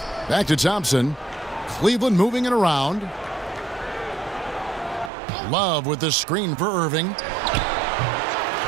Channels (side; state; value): left; drops out; at 5.1 s